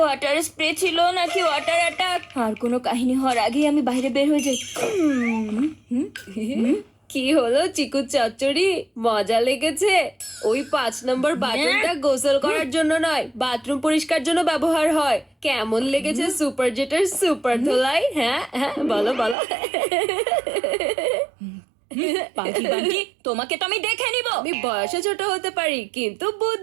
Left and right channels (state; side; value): drops out; left; at 19.4 s